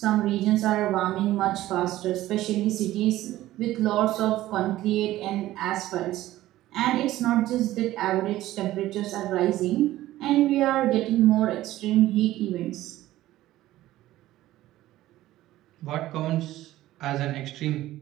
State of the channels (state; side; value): quieter; left; 15.3 dB